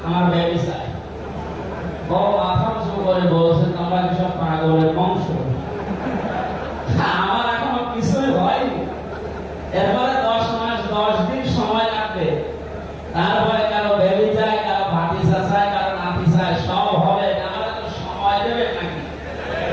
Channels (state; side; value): identical; both; correlation 1.00